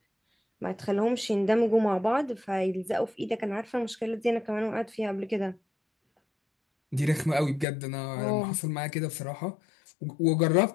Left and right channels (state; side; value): drops out; right; at 7.7 s